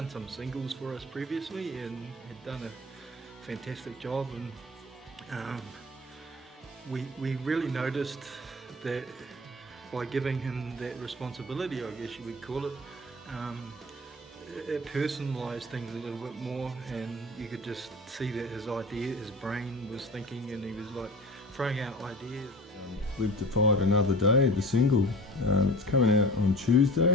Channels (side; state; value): both; normal; correlation 0.39